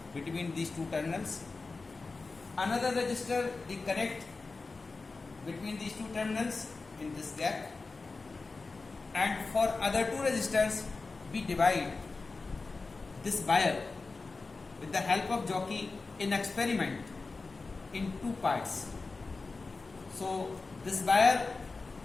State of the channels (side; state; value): right; quieter; 3.9 dB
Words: between these 2 terminals. Another register we connect between these 2 terminals in this gap. And for other 2 resistors, we divide this wire with the help of jockey in experiment in 2 parts. So this wire